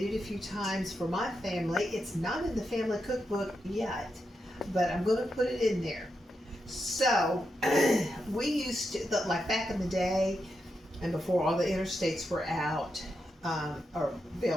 it a few times for my family. It's not in the family cookbook yet, but I'm going to put it in there. So we used to, like back in the day, and before all the interstates were out or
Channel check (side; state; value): both; normal; correlation 0.85